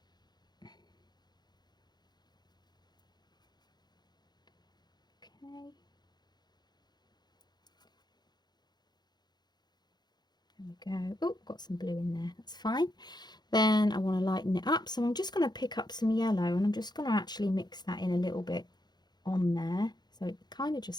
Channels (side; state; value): right; late; 0.20 ms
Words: Okay. we go. Oh, got some blue in there, that's fine. Then I want to lighten it up, so I'm just going to pick up some yellow and I'm just going to actually mix that in a little bit on there, so it kind of